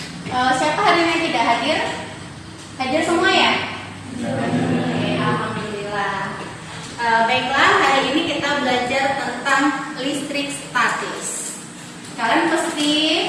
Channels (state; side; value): identical; both; correlation 1.00